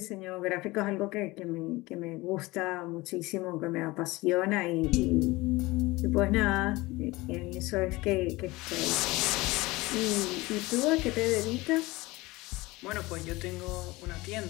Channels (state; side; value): quieter; right; 21.3 dB